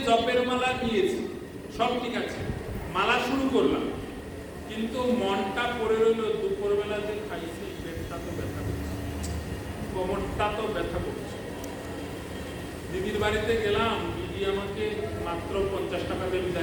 জপের মালা নিয়েছি, সব ঠিক আছে, মালা শুরু করলাম, কিন্তু মনটা পড়ে রইল দুপুরবেলা যে খাইছি, পেটটা তো ব্যথা করছে, কোমরটা তো ব্যথা করছে। দিদির বাড়িতে গেলাম, দিদি আমাকে মাত্র 50 টাকা দিয়ে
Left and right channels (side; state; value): both; identical; correlation 1.00